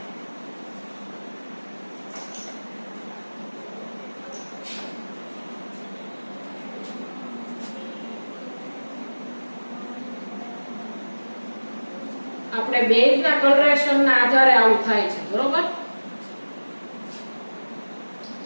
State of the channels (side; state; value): both; inverted; correlation -1.00